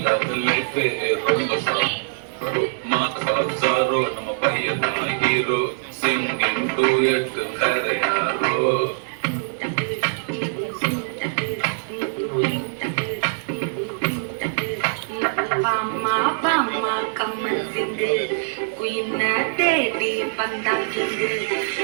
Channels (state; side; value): silent; left; digital silence